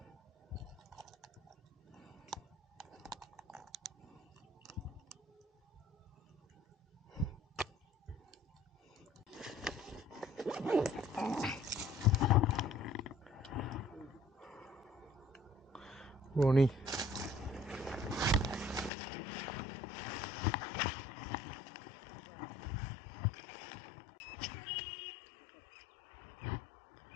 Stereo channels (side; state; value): right; drops out; at 18.9 s